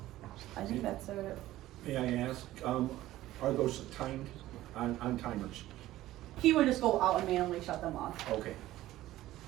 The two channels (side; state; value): left; quieter; 15.3 dB